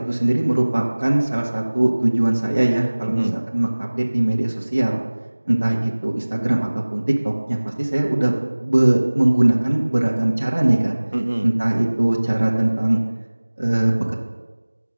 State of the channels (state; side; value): inverted; both; correlation -1.00